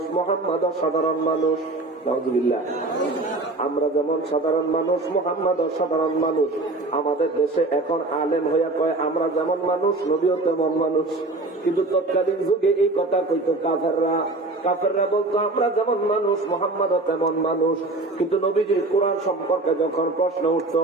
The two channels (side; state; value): left; quieter; 3.0 dB